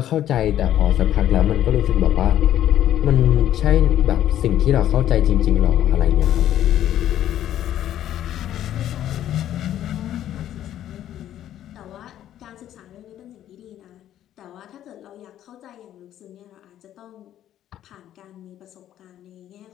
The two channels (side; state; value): right; quieter; 11.7 dB